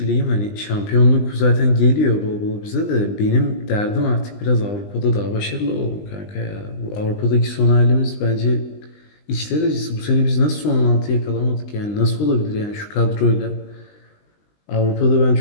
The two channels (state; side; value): late; right; 20 ms